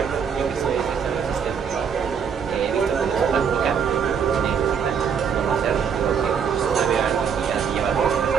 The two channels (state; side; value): quieter; left; 7.0 dB